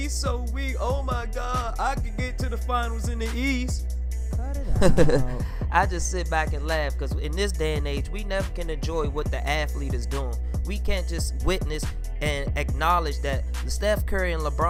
so weak. Oh my God, I could get to the finals in the East. Cut it out. I just sit back and laugh because in this day and age, we never can enjoy what the athlete is doing. We can't just witness and acknowledge that Steph Curry and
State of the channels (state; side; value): identical; both; correlation 1.00